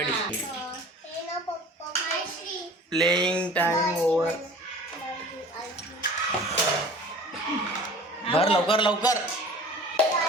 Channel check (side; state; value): both; normal; correlation 0.43